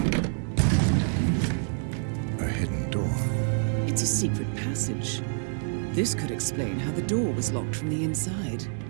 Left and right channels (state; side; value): silent; left; 60 dB below the other